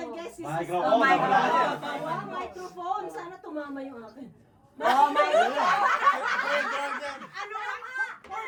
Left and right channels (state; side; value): identical; both; correlation 1.00